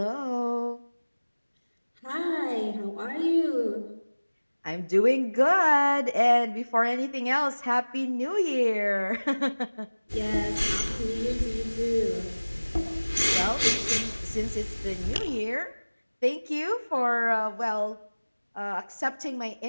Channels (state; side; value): inverted; both; correlation -1.00